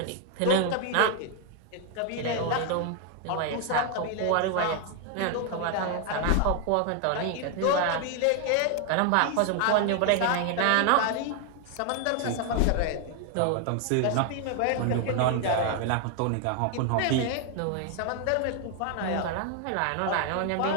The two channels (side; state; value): both; different; correlation 0.01